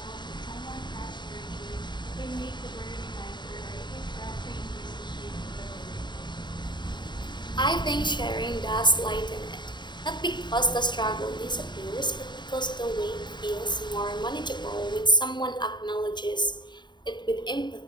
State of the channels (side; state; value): right; late; 0.22 ms